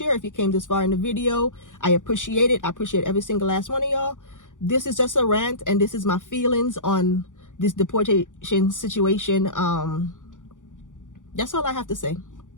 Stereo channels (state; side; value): late; right; 0.87 ms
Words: if you came this far in the video. I appreciate it. I appreciate every single last one of y'all. This is just a rant, and this is my feelings on this deportation situation. That's all I have to say.